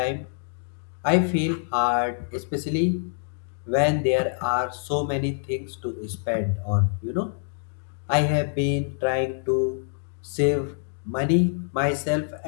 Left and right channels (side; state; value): right; silent; digital silence